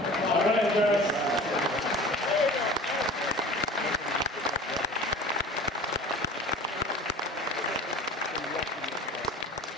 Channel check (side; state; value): both; normal; correlation 0.40